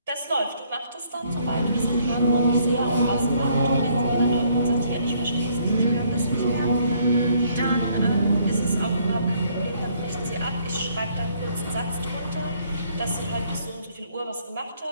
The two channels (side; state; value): both; inverted; correlation -0.66